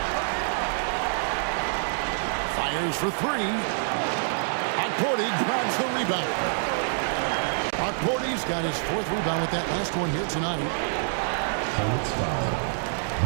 Fires for 3. Huckporty grabs the rebound. Huckporty's got his 4th rebound with that last one here tonight. Hornets foul.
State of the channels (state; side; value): silent; left; digital silence